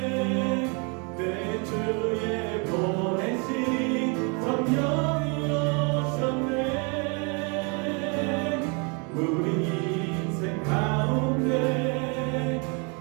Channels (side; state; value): left; quieter; 33.8 dB